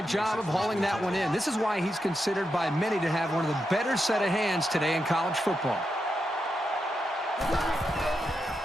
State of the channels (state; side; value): normal; both; correlation 0.86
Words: job of hauling that one in. This is why he's considered by many to have one of the better set of hands today in college football.